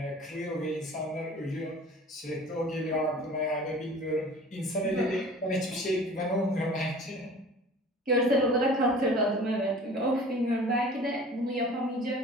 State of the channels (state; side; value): normal; both; correlation 0.44